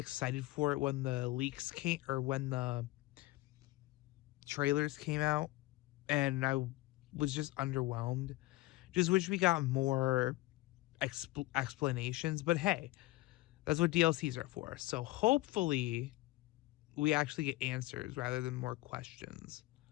for it when the leaks came, or when the trailers came out, and I was just underwhelmed. Just wish we got more explanations, but hey, that's what DLCs are for. So hopefully we actually get answers rather than more questions.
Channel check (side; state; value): right; quieter; 19.2 dB